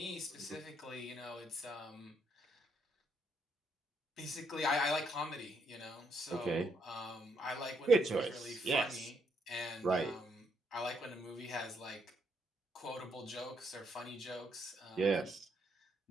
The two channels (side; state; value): both; normal; correlation 0.74